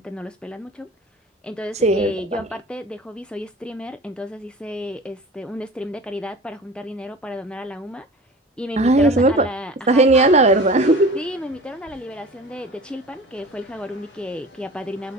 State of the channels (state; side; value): normal; both; correlation 0.39